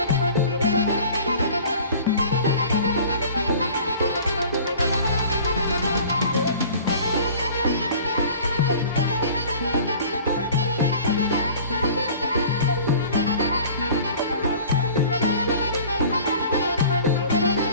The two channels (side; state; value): both; inverted; correlation -0.45